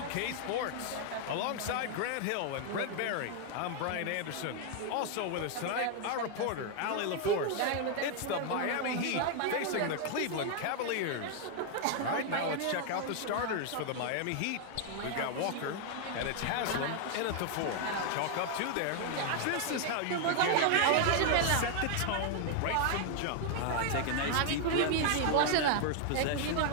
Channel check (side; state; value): both; different; correlation 0.00